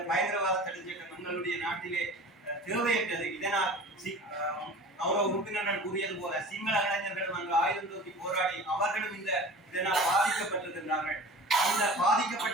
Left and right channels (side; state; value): both; normal; correlation 0.39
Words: பயங்கரவாத தடை சட்டம் எங்களுடைய நாட்டிலே தேவையற்றது. இதனால் கௌரவ உறுப்பினர்கள் கூறியது போல சிங்கள இளைஞர்களும் அங்கு ஆயுதம் தூக்கி போராடி அவர்களும் இதனால் பாதிக்கப்பட்டிருக்கின்றார்கள். அந்த